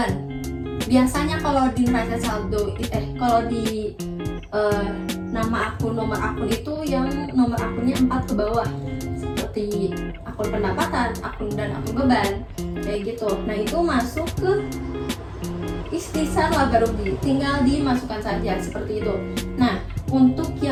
Biasanya kalau di neraca saldo kalau di nama akun, nomor akun itu yang nomor akunnya 4 ke bawah, seperti akun pendapatan, akun dan akun beban, kayak gitu. Nah, itu masuk ke ikhtisar laba rugi, tinggal dimasukkan saja seperti itu. Nah, untuk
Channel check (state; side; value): identical; both; correlation 1.00